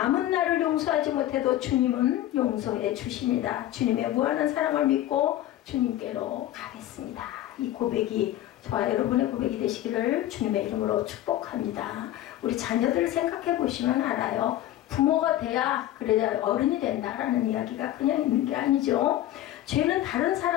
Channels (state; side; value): quieter; right; 13.6 dB